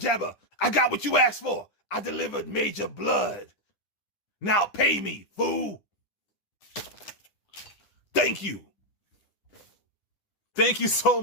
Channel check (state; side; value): late; right; 10 ms